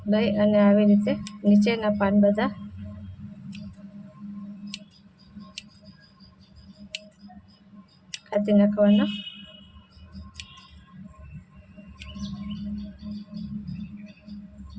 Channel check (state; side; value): identical; both; correlation 1.00